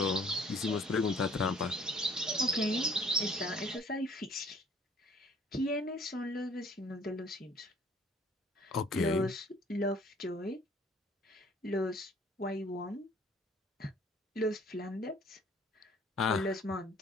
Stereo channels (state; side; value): normal; both; correlation 0.56